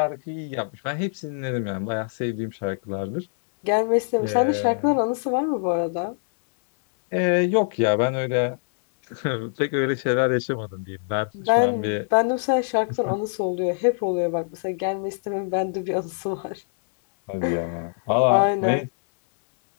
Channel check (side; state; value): right; silent; digital silence